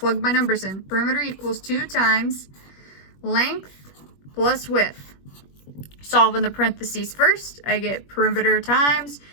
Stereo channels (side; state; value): right; late; 21 ms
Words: my numbers in. Perimeter equals 2 times length plus width. Solve in the parentheses first. I get perimeter times